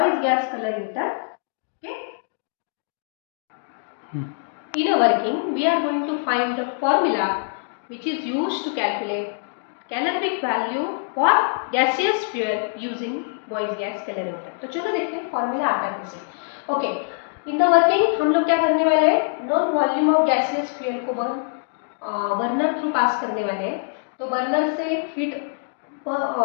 gas calorimeter. Okay. In a working, we are going to find the formula which is used to calculate calorific value for gaseous fuel using voice gas calorimeter. तो चलो देखते हैं फॉर्मूला आता है कैसे. Okay, in the working हम लोग क्या करने वाले हैं, non volume of gaseous fuel को बर्नर थ्रू पास करने वाले हैं. तो बर्नर से हीट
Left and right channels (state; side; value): silent; right; digital silence